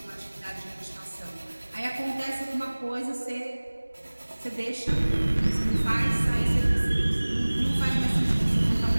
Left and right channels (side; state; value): both; inverted; correlation -1.00